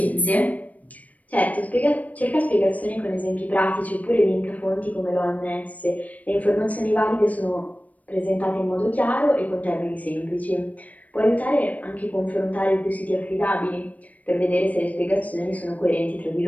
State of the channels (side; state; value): right; late; 0.071 ms